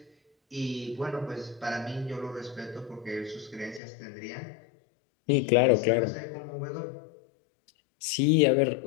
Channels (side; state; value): right; drops out; at 3.8 s